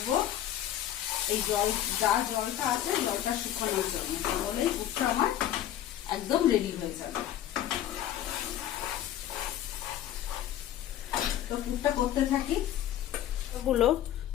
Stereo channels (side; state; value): right; quieter; 11.8 dB